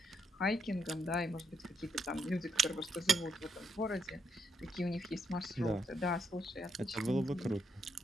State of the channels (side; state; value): both; normal; correlation 0.78